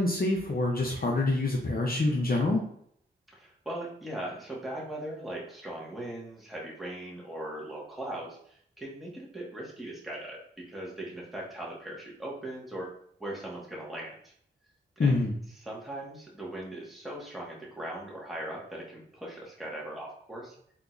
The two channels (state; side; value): normal; both; correlation 0.71